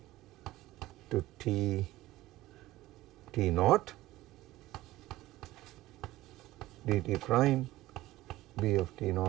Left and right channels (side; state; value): left; quieter; 16.9 dB